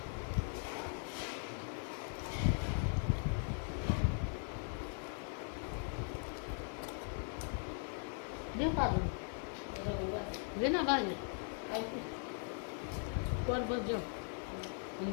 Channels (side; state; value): right; silent; 51 dB below the other